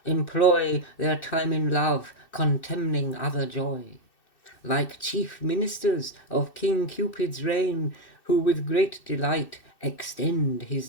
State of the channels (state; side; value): late; right; 2.6 ms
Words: employ their time in love, contemning other joy. Like chief ministers of King Cupid's reign, who with great delight extend his